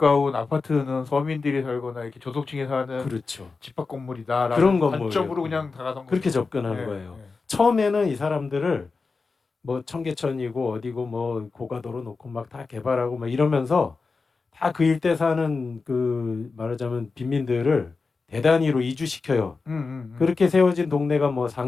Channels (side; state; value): right; quieter; 4.3 dB